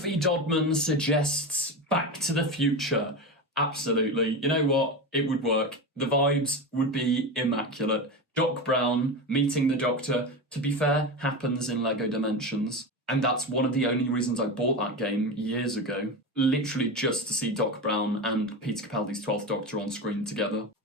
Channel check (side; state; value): both; normal; correlation 0.21